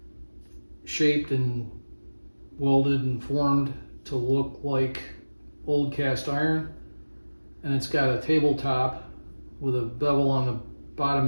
shaped and welded and formed to look like old cast iron. And it's got a tabletop with a bevel on the bottom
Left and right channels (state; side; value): inverted; both; correlation -1.00